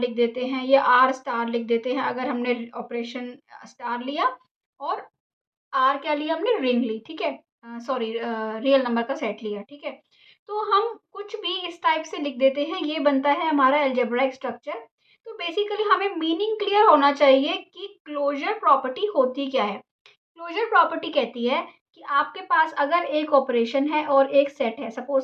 देते हैं या आर स्टार लिख देते हैं अगर हमने ऑपरेशन स्टार लिया, और आर क्या लिया हमने, रिंग ली। ठीक है, सॉरी, रियल नंबर का सेट लिया। ठीक है, तो हम कुछ भी इस टाइप से लिख देते हैं, ये बनता है हमारा अलजेब्राइक स्ट्रक्चर। तो बेसिकली हमें मीनिंग क्लियर होना चाहिए कि क्लोजर प्रॉपर्टी होती क्या है। क्लोजर प्रॉपर्टी कहती है कि आपके पास अगर एक ऑपरेशन है और एक सेट है,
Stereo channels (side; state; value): both; identical; correlation 1.00